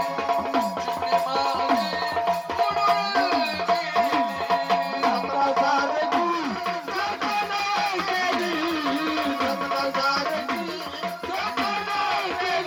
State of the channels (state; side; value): identical; both; correlation 1.00